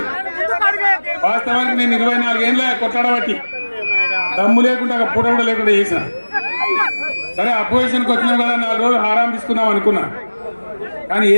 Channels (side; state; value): both; inverted; correlation -1.00